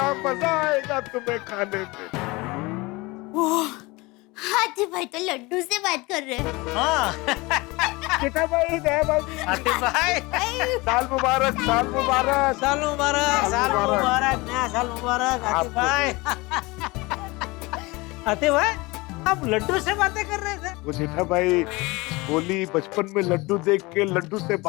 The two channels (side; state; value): right; quieter; 23.5 dB